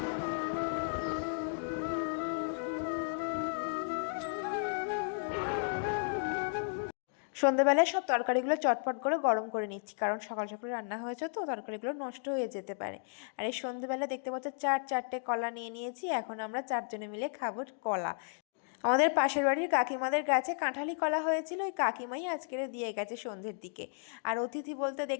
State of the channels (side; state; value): right; silent; digital silence